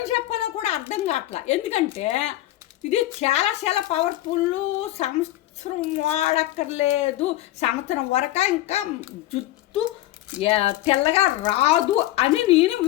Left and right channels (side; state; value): right; quieter; 15.4 dB